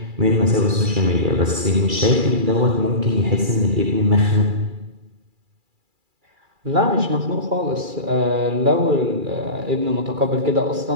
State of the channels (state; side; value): late; left; 2.3 ms